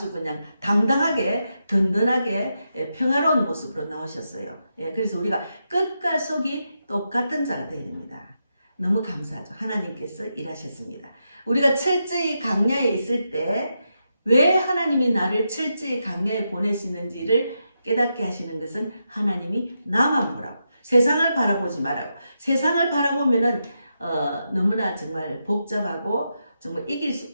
그냥 당당하게 든든하게 평화로운 모습으로 나오셨어요. 예, 그래서 우리가 끝과 속이 똑같은 자가 되어야 됩니다. 너무 감사하죠. 하나님께서 일하셨습니다. 우리가 철저히 강야에 있을 때 왜 하나님이 나를 철저히 강야에 보내시는지를 깨닫게 하시는 것은 하나님이 나만 보라고, 세상을 바라보지 말라고. 세상을 바라보면은 너무나 정말 복잡하고 정말 이길 수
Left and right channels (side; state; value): both; inverted; correlation -0.85